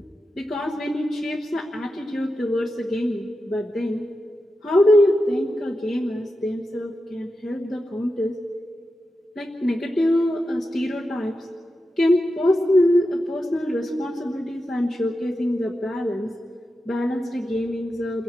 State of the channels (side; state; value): both; normal; correlation 0.90